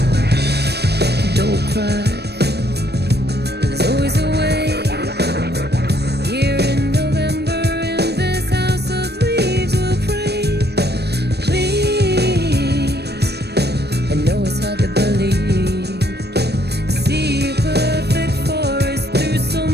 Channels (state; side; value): late; left; 0.48 ms